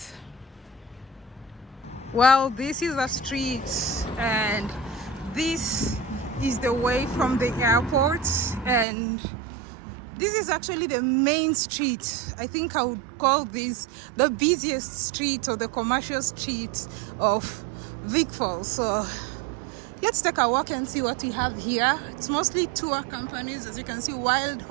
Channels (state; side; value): drops out; left; at 8.8 s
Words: Well, this is a street, and this is the way from the airport, and this is actually the main street. I think I would call this the busiest street or the commercial street of Vic Falls. So let's take a walk and see what we have here. It's mostly tour companies, as you can see. Wild